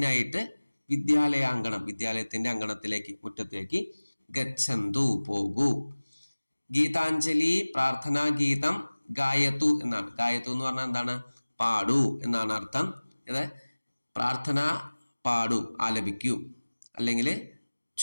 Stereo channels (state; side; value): inverted; both; correlation -1.00